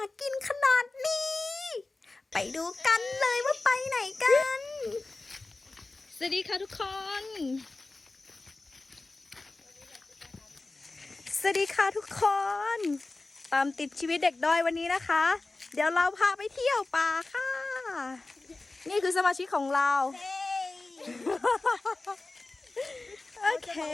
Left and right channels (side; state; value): right; quieter; 3.3 dB